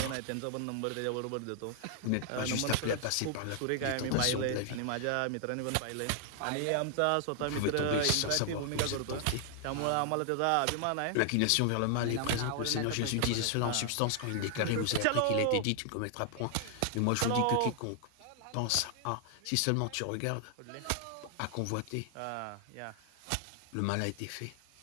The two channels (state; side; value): different; both; correlation 0.00